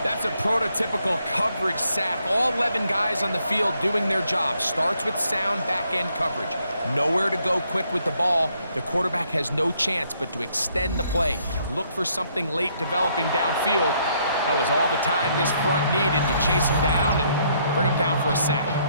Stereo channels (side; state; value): both; inverted; correlation -0.71